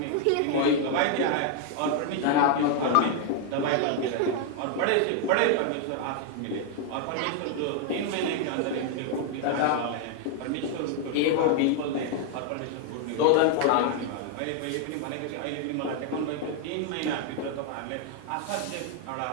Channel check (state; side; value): different; both; correlation 0.00